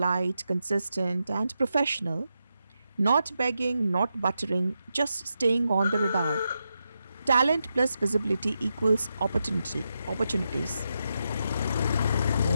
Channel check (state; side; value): inverted; both; correlation -0.86